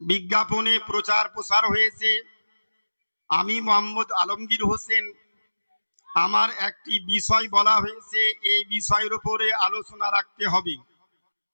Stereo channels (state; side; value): inverted; both; correlation -1.00